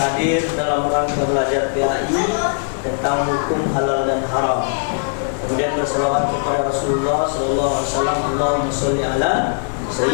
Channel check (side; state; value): right; silent; digital silence